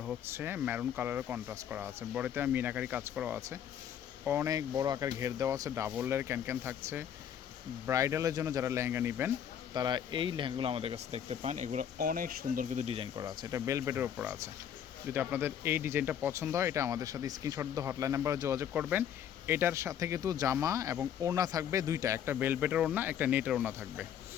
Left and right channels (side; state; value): right; quieter; 9.3 dB